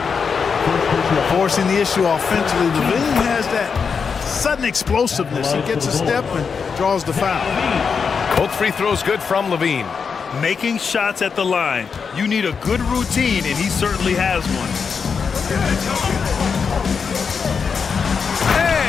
Forcing the issue offensively. LaVine has that sudden explosiveness. He gets a step and draws the foul. Both free throws good from LaVine. Making shots at the line. You need a good routine, and he certainly has one.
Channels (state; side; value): quieter; right; 5.8 dB